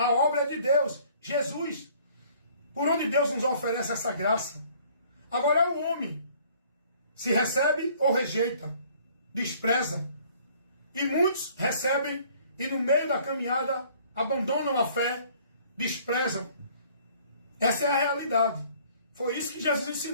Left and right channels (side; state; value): both; inverted; correlation -0.56